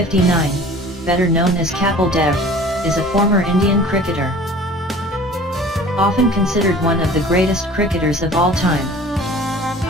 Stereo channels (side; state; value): both; normal; correlation 0.45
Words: better known as Kapil Dev, is a former Indian cricketer. Often considered one of the greatest cricketers of all time.